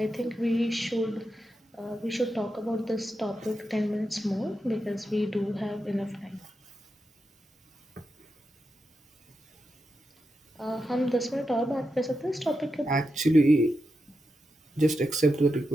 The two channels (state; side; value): normal; both; correlation 0.87